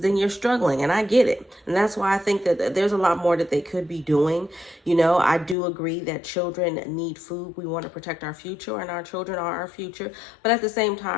you're struggling. And I get it. And that's why I think that there's a lot more that they could be doing. I do agree that children need food. We want to protect our future, and our children are our future. But at the same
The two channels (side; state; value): right; drops out; at 5.6 s